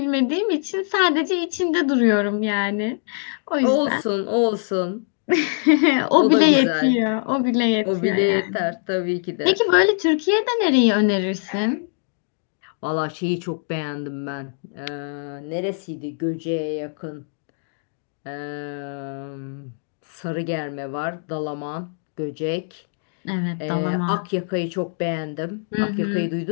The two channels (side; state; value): right; silent; digital silence